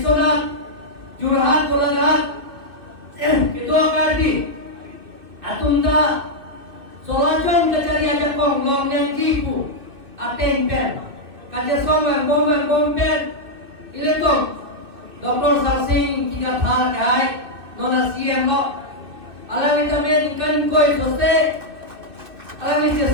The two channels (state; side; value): late; left; 2.6 ms